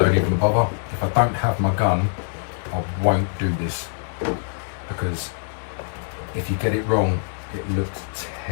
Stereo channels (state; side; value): silent; right; digital silence